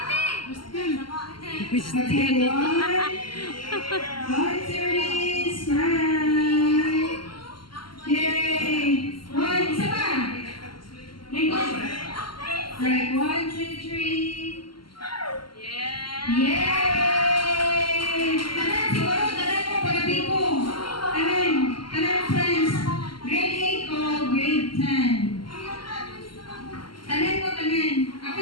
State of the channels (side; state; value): right; late; 0.72 ms